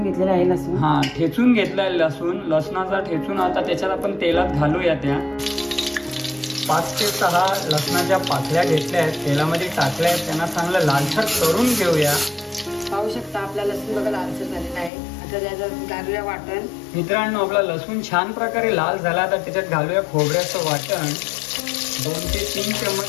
घेतलेला आहे लसूण. हा ठेचून घेतलाय लसूण. लसणाचा ठेचून आता त्याच्यात आपण तेलात घालूया. त्या 5 ते 6 लसणाच्या पाकळ्या घेतल्या आहेत, तेलामध्ये टाकल्या आहेत, त्यांना चांगलं लालसर करून घेऊया. पाहू शकता आपला लसूण बघा लालसर झालेला आहे. आता त्याच्यात घालूया वाटण. मित्रांनो आपला लसूण छान प्रकारे लाल झाला तर त्याच्यात घालूया खोबऱ्याचं वाटण. 2 ते 3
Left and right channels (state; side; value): drops out; right; at 14.9 s